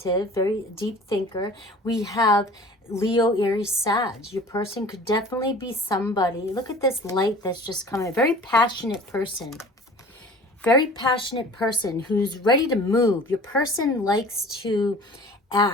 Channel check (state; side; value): normal; both; correlation 0.44